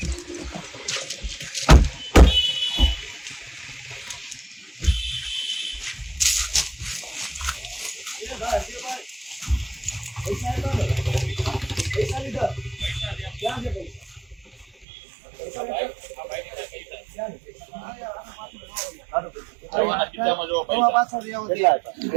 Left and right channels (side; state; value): left; drops out; at 14.9 s